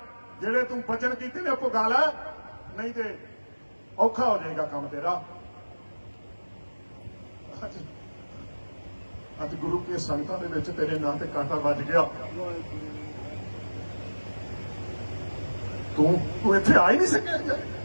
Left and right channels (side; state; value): both; inverted; correlation -1.00